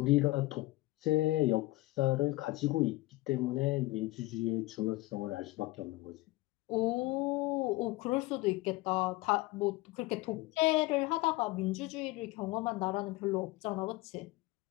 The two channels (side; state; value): right; quieter; 19.9 dB